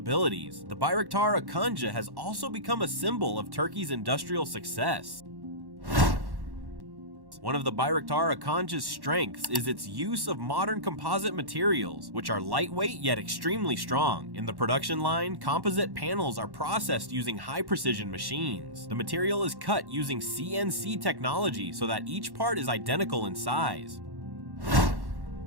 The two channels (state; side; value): late; left; 1.1 ms